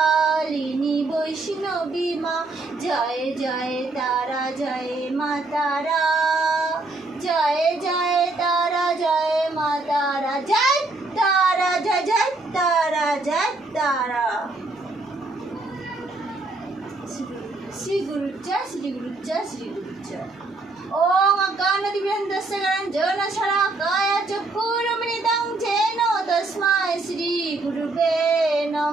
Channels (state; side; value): quieter; left; 3.2 dB